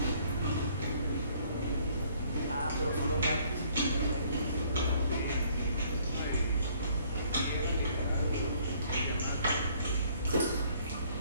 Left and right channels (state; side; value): inverted; both; correlation -0.61